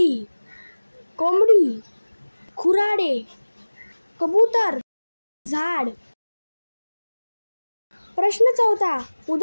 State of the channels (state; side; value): inverted; both; correlation -1.00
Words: कोंबडी, खुराडे, कबूतर, झाड. प्रश्न 4.